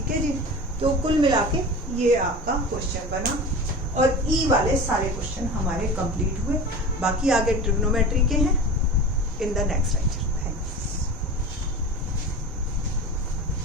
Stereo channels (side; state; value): both; normal; correlation 0.33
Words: है जी, तो कुल मिला के ये आपका क्वेश्चन बना और ई वाले सारे क्वेश्चन हमारे कंप्लीट हुए। बाकी आगे ट्रिग्नोमेट्री के हैं इन द नेक्स्ट लेक्चर।